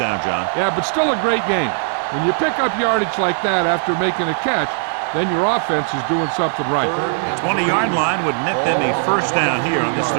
John. Yeah, but still a great game. When you pick up yardage like that after making a catch, then your offense is doing something right. The 20-yard line would net them a 1st down here on this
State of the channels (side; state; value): left; silent; 67 dB below the other